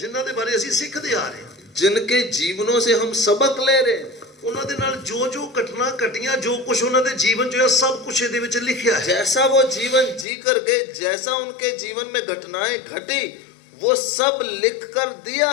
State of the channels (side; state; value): right; drops out; at 10.2 s